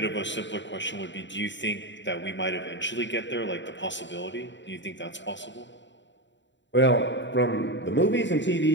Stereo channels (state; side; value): late; right; 0.53 ms